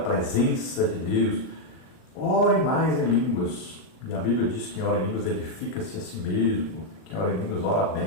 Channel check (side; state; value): right; late; 39 ms